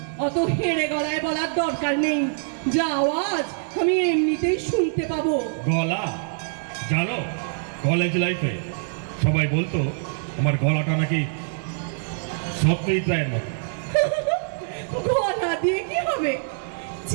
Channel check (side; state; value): left; silent; digital silence